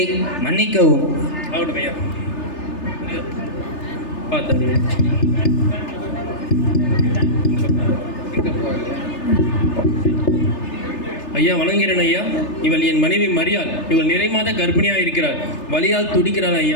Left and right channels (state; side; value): late; right; 3.3 ms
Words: மன்னிக்கவும். ஆகட்டும் ஐயா. பார்த்து ஐயா வணங்குகிறேன். ஐயா இவள் என் மனைவி மரியாள். இவள் நிறைமாத கர்ப்பிணியா இருக்கிறாள். வலியால் துடிக்கிறாள்.